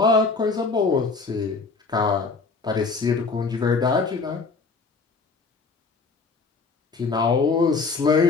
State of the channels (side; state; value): right; quieter; 4.3 dB